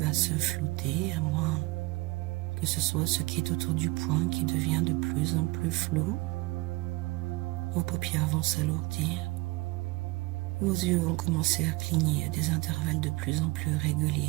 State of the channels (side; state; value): left; quieter; 22.9 dB